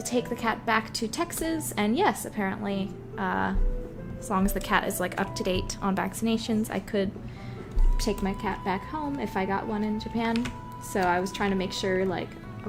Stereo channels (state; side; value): identical; both; correlation 1.00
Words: take the cat back to Texas? And yes, apparently, as long as the cat is like up to date on vaccinations, I could take my cat back home if I got one in Japan. So I was trying to make sure, like,